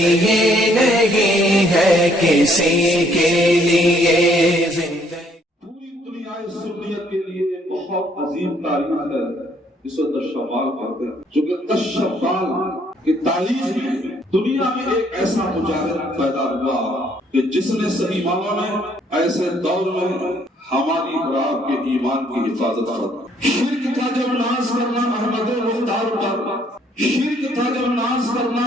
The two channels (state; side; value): normal; both; correlation 0.66